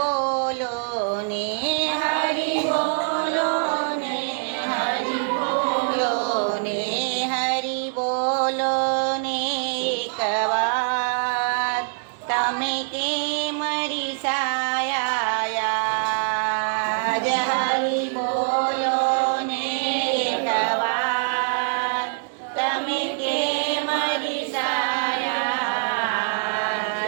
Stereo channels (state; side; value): silent; left; digital silence